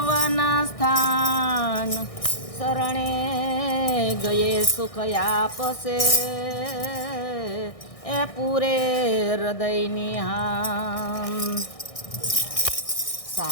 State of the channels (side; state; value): right; late; 1.6 ms